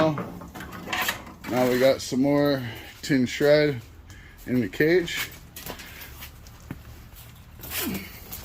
Now we got some more tin shred in the cage.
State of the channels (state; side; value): identical; both; correlation 1.00